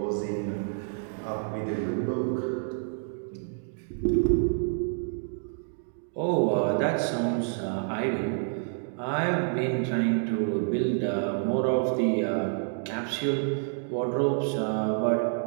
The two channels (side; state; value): left; silent; digital silence